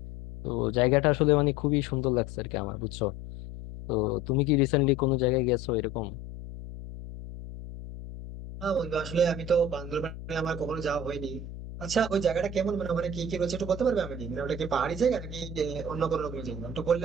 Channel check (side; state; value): left; noise; hum, 11 dB below the sound